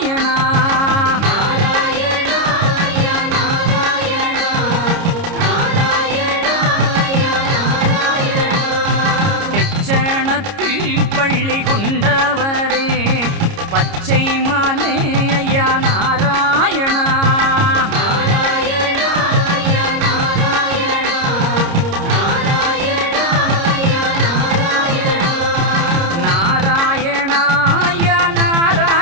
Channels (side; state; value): left; late; 30 ms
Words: தெச்சணத்தில் பள்ளி கொண்டவரே பச்சை மாலே ஐயா நாராயணா.